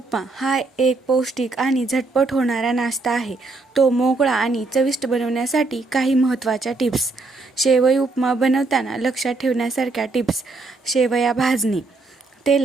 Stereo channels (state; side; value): quieter; left; 3.5 dB